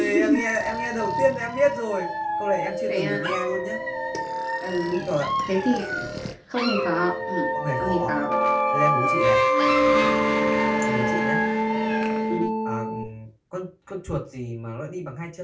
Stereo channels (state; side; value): identical; both; correlation 1.00